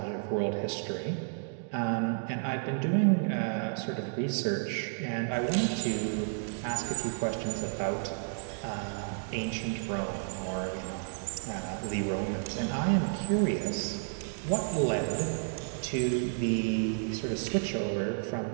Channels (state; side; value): silent; left; digital silence